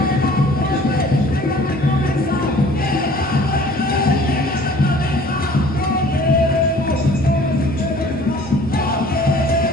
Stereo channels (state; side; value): normal; both; correlation 0.50